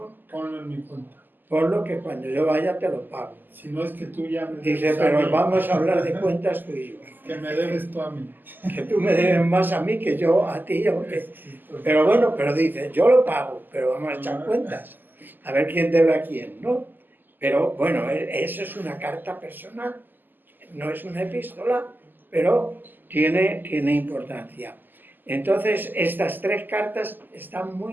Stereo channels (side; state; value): left; late; 0.089 ms